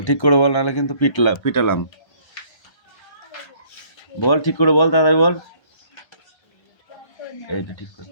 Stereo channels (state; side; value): late; right; 1.3 ms